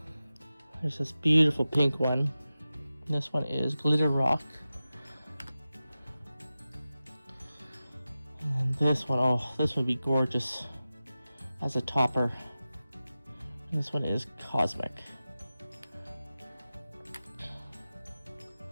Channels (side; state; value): both; inverted; correlation -0.94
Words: There's this beautiful pink one. This one is Glitter Rock. And this one, oh, this would be gorgeous as a topper. This one is Cosmic.